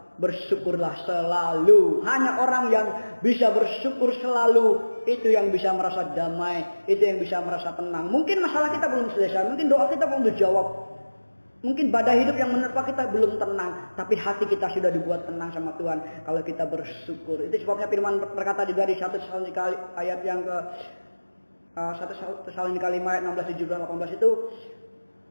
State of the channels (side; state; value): both; inverted; correlation -1.00